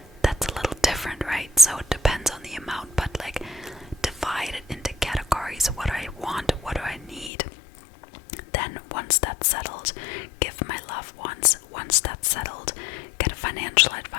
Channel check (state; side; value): drops out; right; at 7.3 s